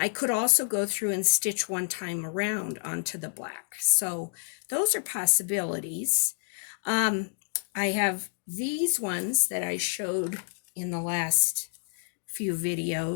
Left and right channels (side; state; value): right; silent; 59 dB below the other